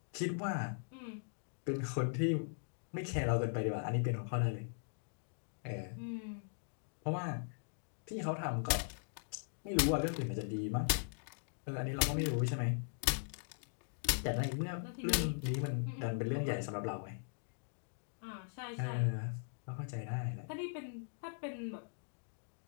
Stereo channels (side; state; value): right; silent; digital silence